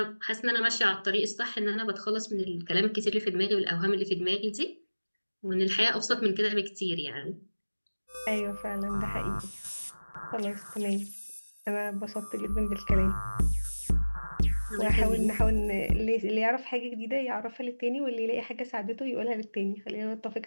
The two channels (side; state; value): both; inverted; correlation -1.00